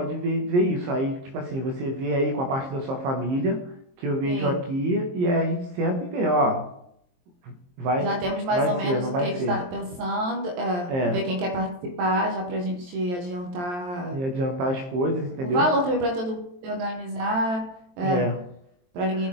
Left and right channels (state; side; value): late; left; 23 ms